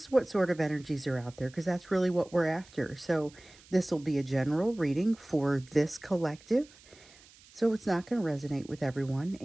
what sort of energies are out there because that's really what we're after. So, this will be a general reading for this collective. So, it's not going to resonate with everyone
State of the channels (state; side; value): noise; right; hiss, 25 dB below the sound